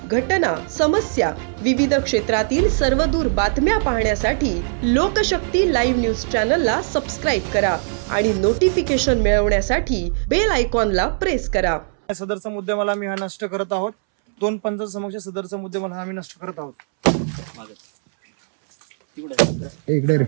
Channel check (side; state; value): left; silent; 66 dB below the other